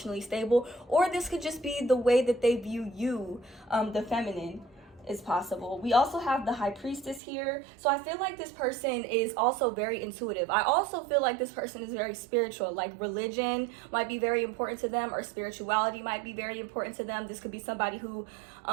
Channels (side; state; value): left; drops out; at 7.2 s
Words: stable. Or this could just be the way that they view you, the feminine. is possible. We also have the High Priestess here. So I feel like this person is also very intuitive. I also feel like this person is very spiritual. Like religion might be very important to them, or spirituality might be very important to them. This could be somebody who